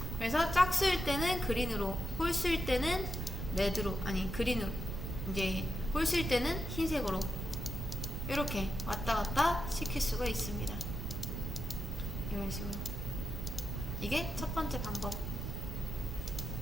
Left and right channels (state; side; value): noise; right; rumble, 5 dB below the sound